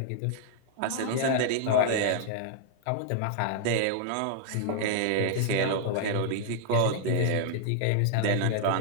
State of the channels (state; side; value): different; both; correlation -0.01